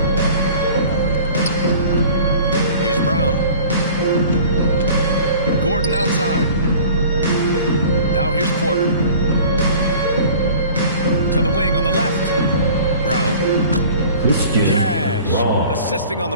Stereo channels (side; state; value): both; inverted; correlation -0.45